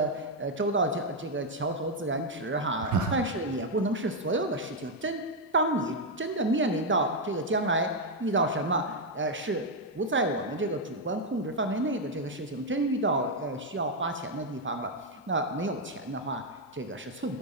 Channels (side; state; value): both; normal; correlation 0.00